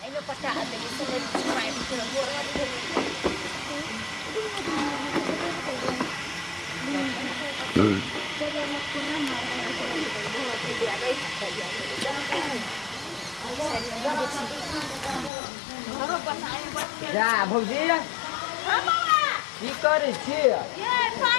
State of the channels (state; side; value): drops out; right; at 15.3 s